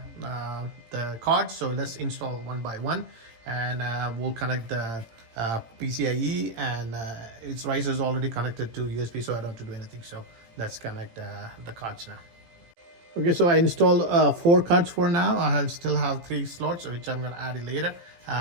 the cards, so let's install one by one, and we'll connect the PCIe, and its riser is already connected to USB, so I don't have to do anything. So let's connect the cards now. Okay, so I installed 4 cards for now. I still have 3 slots, which I'm gonna add it later.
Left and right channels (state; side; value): late; left; 18 ms